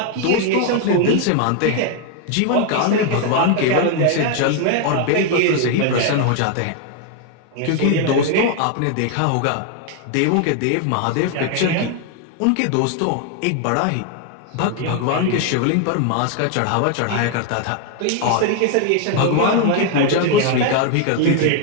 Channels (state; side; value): different; both; correlation 0.01